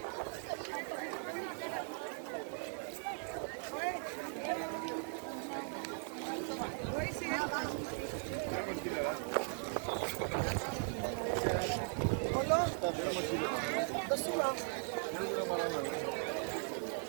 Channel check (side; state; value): left; silent; 52 dB below the other